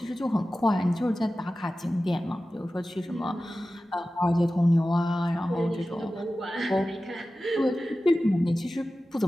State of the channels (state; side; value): normal; both; correlation 0.95